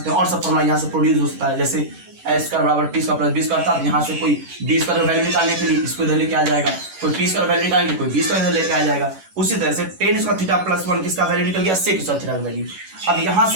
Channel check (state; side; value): late; left; 11 ms